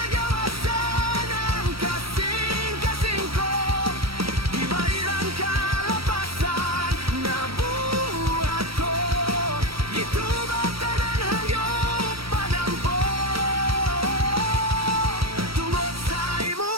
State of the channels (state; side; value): late; left; 0.75 ms